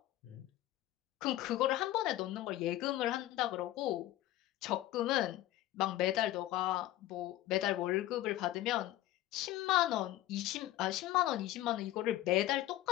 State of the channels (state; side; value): quieter; right; 15.1 dB